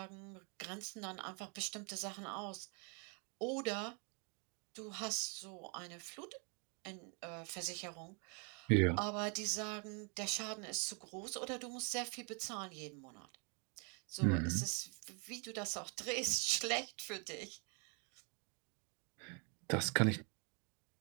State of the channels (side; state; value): left; quieter; 36.2 dB